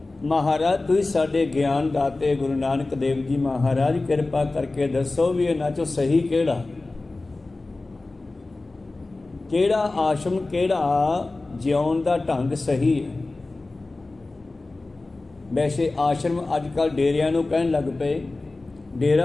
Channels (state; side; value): quieter; right; 3.2 dB